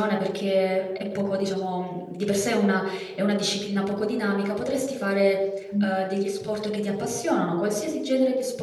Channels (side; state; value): both; identical; correlation 1.00